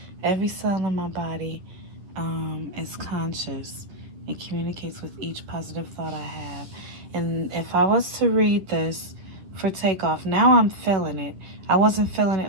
Every cell in my body is conscious and communicates with each positive thought I have. And if I was to read this for Takeoff, now I'm feeling it. I wasn't feeling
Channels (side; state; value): left; late; 11 ms